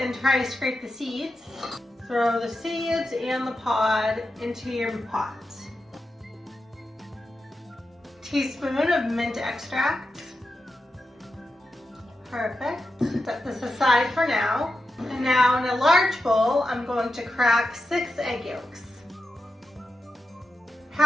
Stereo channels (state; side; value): normal; both; correlation 0.89